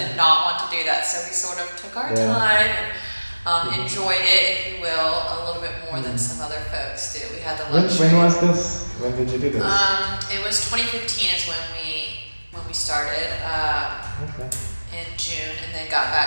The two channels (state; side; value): inverted; both; correlation -1.00